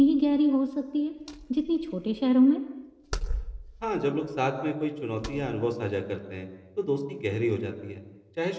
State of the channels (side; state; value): both; identical; correlation 1.00